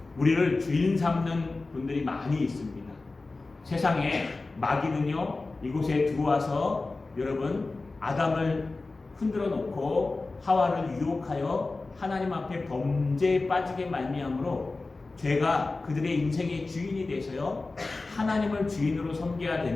우리를 주인 삼는 분들이 많이 있습니다. 세상에 마귀는요, 이곳에 들어와서 여러분 아담을 흔들어 놓고 하와를 유혹하여 하나님 앞에 범죄에 빠지게 말미암으로 죄가 그들의 인생의 주인이 돼서요, 하나님을 주인으로 섬겨야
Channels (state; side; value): quieter; right; 3.5 dB